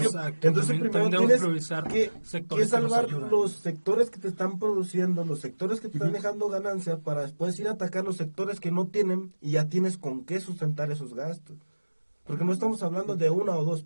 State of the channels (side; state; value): both; inverted; correlation -1.00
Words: Entonces También primero debemos tienes priorizar que sectores que nos salvar ayudan. los sectores que te están produciendo, los sectores que te están dejando ganancia, para después ir a atacar los sectores que no tienen y ya tienes con qué sustentar esos gastos. Porque no estamos hablando de una o dos